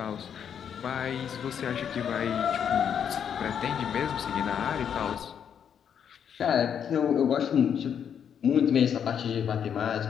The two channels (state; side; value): quieter; right; 8.2 dB